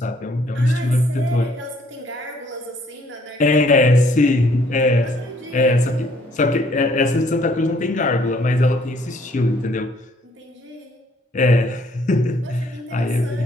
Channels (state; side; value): normal; both; correlation 0.64